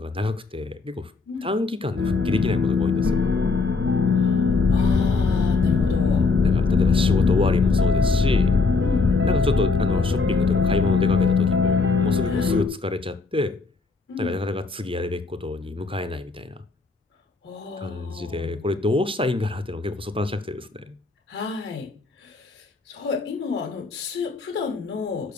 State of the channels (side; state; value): right; quieter; 4.1 dB